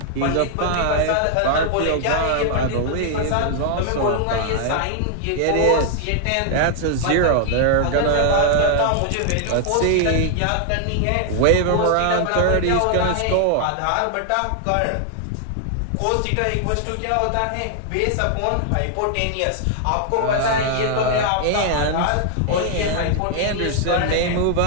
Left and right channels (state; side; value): different; both; correlation 0.00